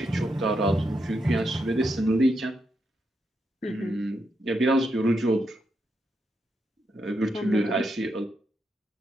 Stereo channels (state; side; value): normal; both; correlation 0.82